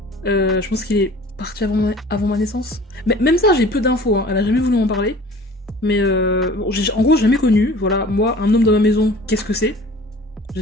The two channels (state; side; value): normal; both; correlation 0.46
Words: je pense qu'il est parti avant ma naissance. Mais même ça, j'ai peu d'infos, hein. Elle a jamais voulu m'en parler. Mais bon, en gros, j'ai jamais connu. Voilà, moi, un homme dans ma maison, qu'est-ce que c'est?